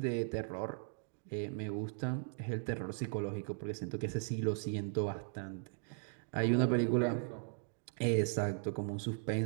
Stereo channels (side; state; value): left; silent; 53 dB below the other